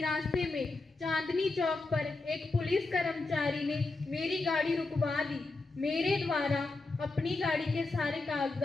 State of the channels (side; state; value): right; quieter; 3.4 dB